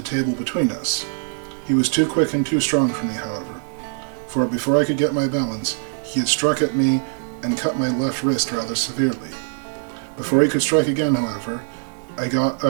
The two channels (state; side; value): silent; left; 64 dB below the other